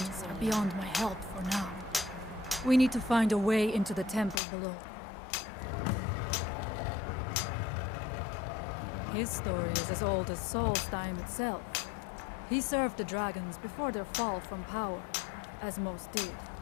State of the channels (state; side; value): drops out; right; at 4.4 s